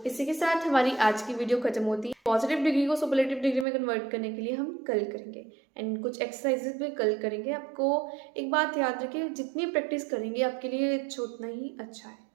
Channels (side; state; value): left; drops out; at 3.7 s